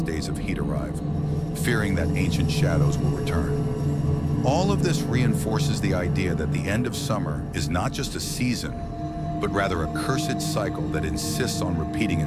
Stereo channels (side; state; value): both; identical; correlation 1.00